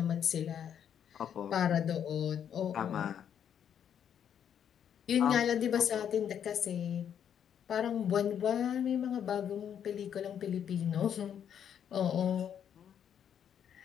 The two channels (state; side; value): quieter; right; 8.8 dB